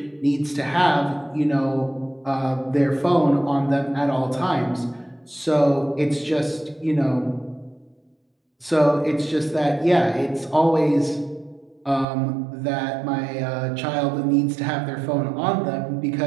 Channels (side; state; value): left; drops out; at 12.1 s